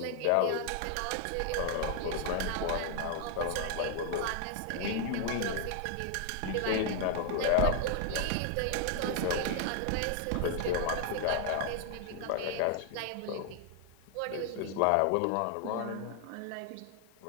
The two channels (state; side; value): different; both; correlation 0.00